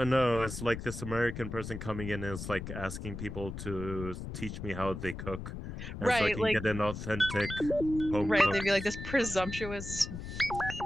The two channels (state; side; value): noise; left; rumble, 8 dB below the sound